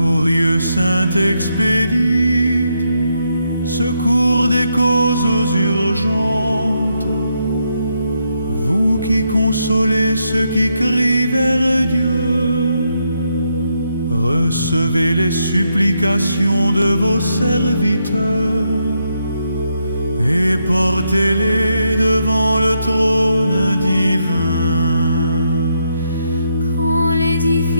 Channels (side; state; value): both; inverted; correlation -0.80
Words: Saint-Expédie, secours des causes urgentes, vous qui consolez ceux qui crient vers Dieu, recevez les supplications de vos serviteurs et portez-les devant le trône divin. Quand les